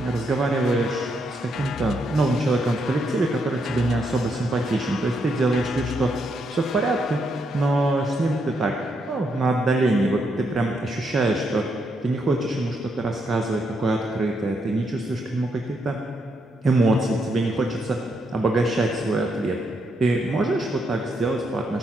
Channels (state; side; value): normal; both; correlation 0.78